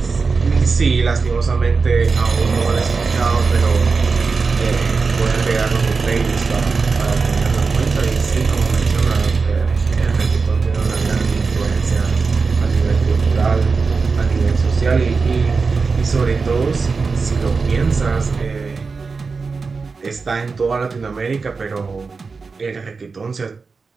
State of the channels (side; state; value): left; quieter; 4.6 dB